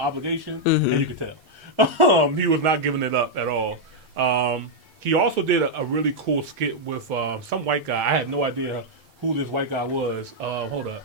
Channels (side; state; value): both; normal; correlation -0.03